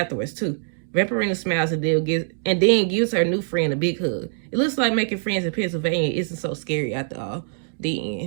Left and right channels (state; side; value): silent; left; digital silence